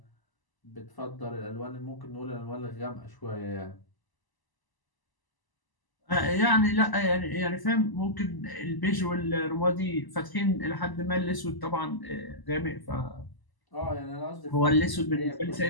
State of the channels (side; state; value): right; late; 1.0 ms